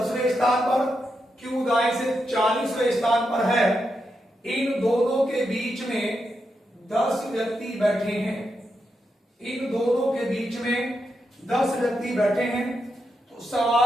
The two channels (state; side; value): normal; both; correlation 0.85